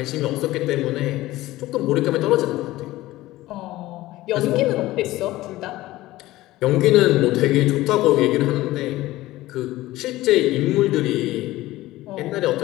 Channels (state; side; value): quieter; right; 17.2 dB